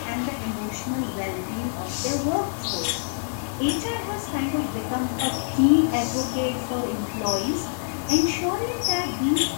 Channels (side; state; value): right; silent; digital silence